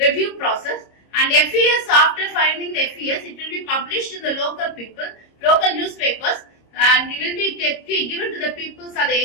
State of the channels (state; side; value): late; right; 26 ms